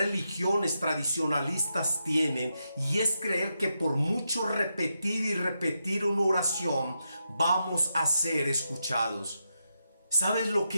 tradicionalistas tienen, y es creer que por mucho repetir y repetir una oración vamos a ser escuchados. ¿Sabes lo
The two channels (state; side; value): inverted; both; correlation -0.85